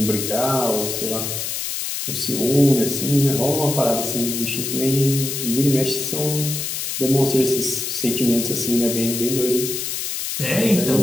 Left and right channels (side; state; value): left; noise; hiss, 3 dB below the sound